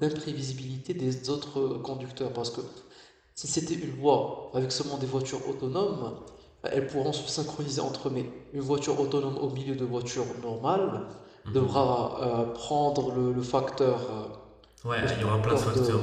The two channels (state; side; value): identical; both; correlation 1.00